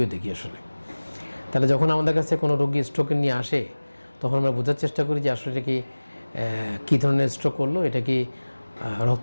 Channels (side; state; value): both; inverted; correlation -1.00